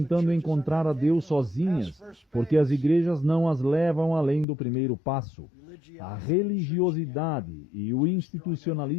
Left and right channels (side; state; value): right; drops out; at 4.5 s